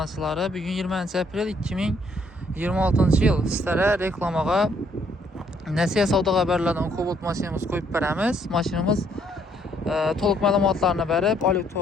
bugün 20 aprel 2026-cı il sizlərə reklamağa Nəsihə Savda Xəbərlərdən Cobalt maşinimiz qoyub verəmiz. Maşinimiz toluq məlumatlarını verib,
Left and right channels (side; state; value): both; normal; correlation 0.68